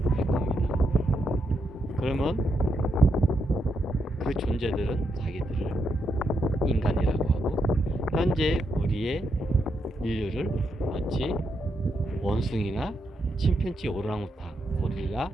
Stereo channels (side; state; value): both; normal; correlation 0.81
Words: 겁니다. 그러면 그 존재들은 자기들을 인간이라고 하고 현재 우리의 인류를 마치 원숭이나 침팬지, 오랑우탄, 고릴라